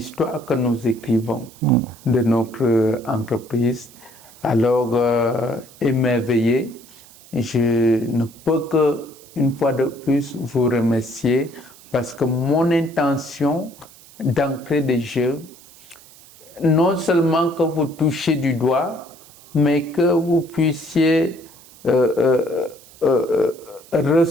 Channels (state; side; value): noise; right; hiss, 23 dB below the sound